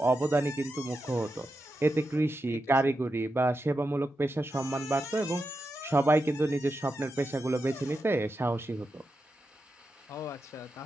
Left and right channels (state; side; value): normal; both; correlation 0.88